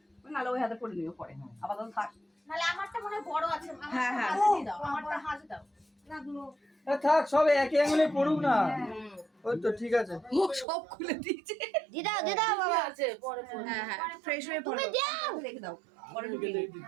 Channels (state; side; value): drops out; left; at 10.7 s